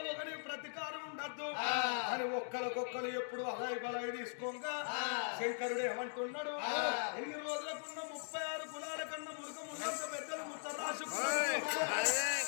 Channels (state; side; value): silent; right; digital silence